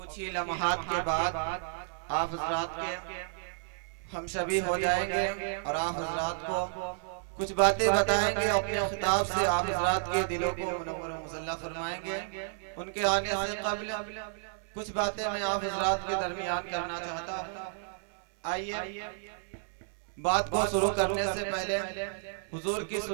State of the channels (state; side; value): silent; left; digital silence